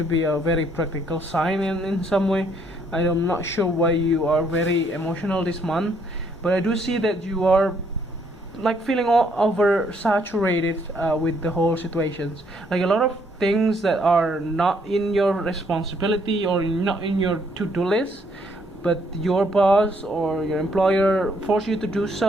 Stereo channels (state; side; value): normal; both; correlation 0.68